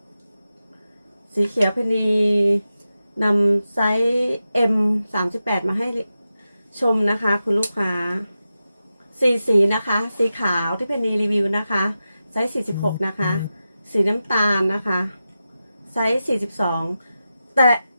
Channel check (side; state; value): both; inverted; correlation -0.91